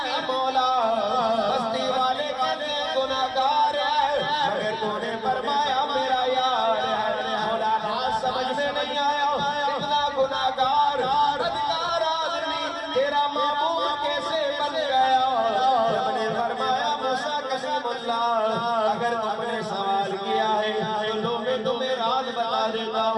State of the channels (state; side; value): identical; both; correlation 1.00